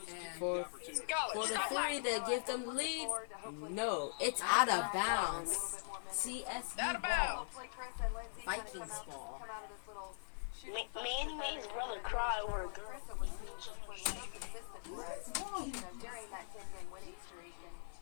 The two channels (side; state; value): right; silent; digital silence